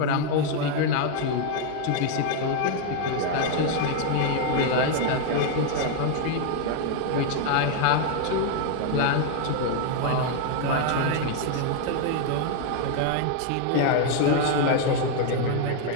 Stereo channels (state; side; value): different; both; correlation 0.00